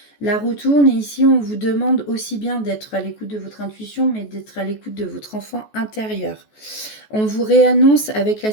La roue tourne et ici, on vous demande aussi bien d'être à l'écoute de votre intuition, mais d'être à l'écoute de votre enfant intérieur. On vous réannonce avec la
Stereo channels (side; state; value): right; late; 14 ms